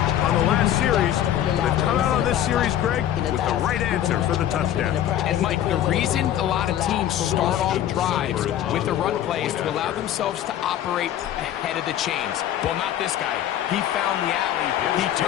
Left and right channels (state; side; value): quieter; right; 11.3 dB